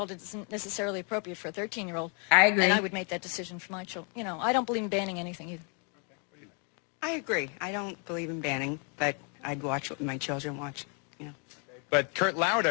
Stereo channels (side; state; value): right; quieter; 38.2 dB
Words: isn't necessarily appropriate for a 13-year-old. I agree. And I would make that decision for my children. I don't believe in banning anything either. I agree. I don't believe in banning, but I'd watch what my children watch, But Kurt